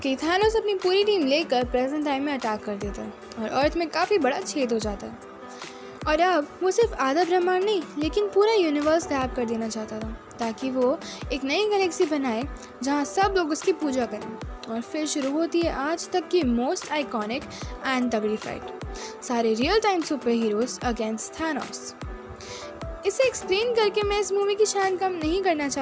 थैनोस अपनी पूरी टीम लेकर प्रेजेंट टाइम में अटैक कर देता है और अर्थ में काफ़ी बड़ा छेद हो जाता है। और अब वो सिर्फ आधा ब्रह्मांड नहीं, लेकिन पूरा यूनिवर्स गायब कर देना चाहता था, ताकि वो एक नई गैलेक्सी बनाए जहाँ सब लोग उसकी पूजा करें। और फिर शुरू होती है आज तक की मोस्ट आइकॉनिक एंड तगड़ी फाइट, सारे real time super heroes against Thanos. इसे एक्सप्लेन करके मैं इस मूवी की शान कम नहीं करना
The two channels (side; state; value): both; identical; correlation 1.00